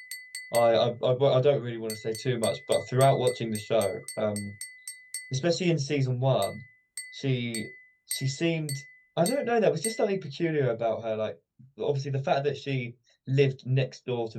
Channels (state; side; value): identical; both; correlation 1.00